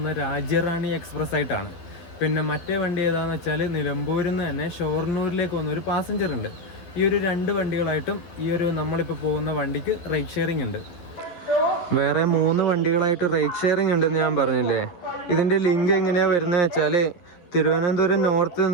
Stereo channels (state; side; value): late; right; 11 ms